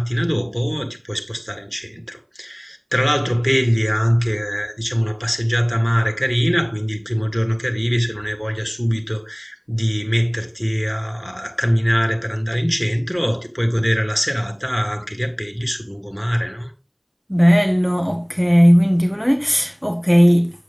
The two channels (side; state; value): both; identical; correlation 1.00